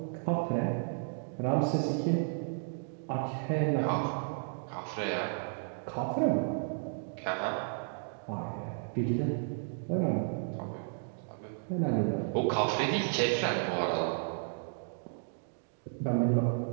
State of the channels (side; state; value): left; silent; digital silence